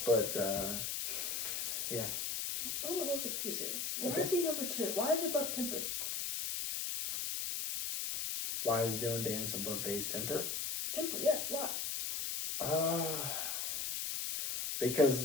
But, yeah. I'm a little confused here. Why Okay. is he number 2? Why is it above Temper? Why is Dylan Dennis above FaZe Temper? Temper, yeah. Why?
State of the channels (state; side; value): noise; left; hiss, 2 dB below the sound